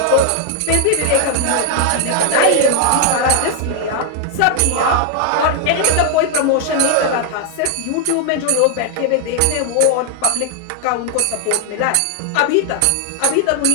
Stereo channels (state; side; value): different; both; correlation 0.00